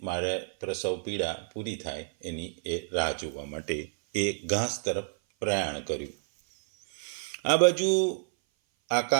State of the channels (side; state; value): left; silent; 56 dB below the other